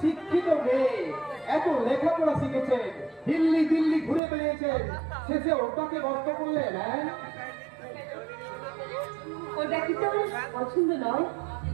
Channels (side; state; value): left; drops out; at 4.2 s